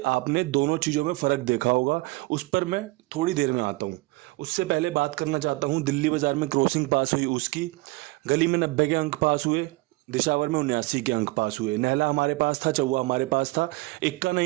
आपने दोनों चीज़ों में फ़र्क देखा होगा, उस पर मैं थोड़ी देर में आता हूँ। उससे पहले बात करना चाहता हूँ दिल्ली बाजार में क्रॉसिंग पास हुई उसकी। गली में 90 के अंक पास हुए, दिशावर में 79 के अंक पास हुए। नहला हमारे पास था, चौवा हमारे पास था, इक्का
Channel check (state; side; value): quieter; left; 22.4 dB